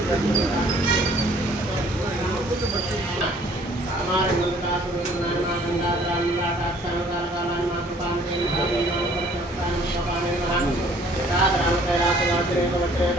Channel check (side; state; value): both; normal; correlation 0.57